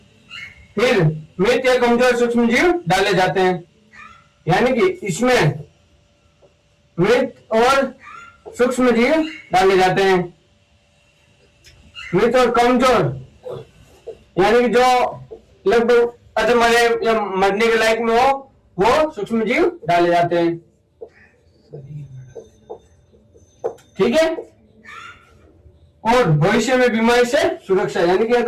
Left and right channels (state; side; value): identical; both; correlation 1.00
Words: फिर मृत या कमजोर सूक्ष्म जीव डाले जाते हैं, यानी कि इसमें मृत और सूक्ष्म जीव डाले जाते हैं। मृत और कमजोर यानी कि जो लगभग अधमरे या मरने के लायक में हो वो सूक्ष्म जीव डाले जाते हैं। ठीक है, और भविष्य में बीमारी से सुरक्षा, यानी कि